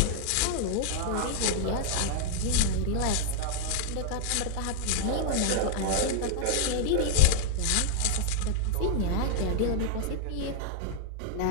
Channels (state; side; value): different; both; correlation -0.01